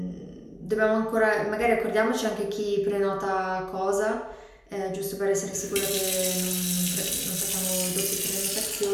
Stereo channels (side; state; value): both; identical; correlation 1.00